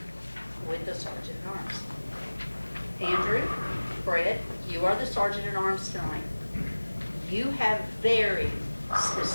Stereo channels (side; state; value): both; inverted; correlation -1.00